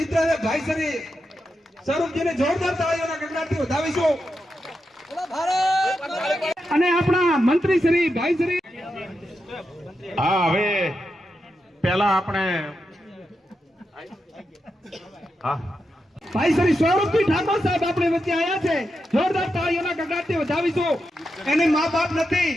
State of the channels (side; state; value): both; normal; correlation 0.87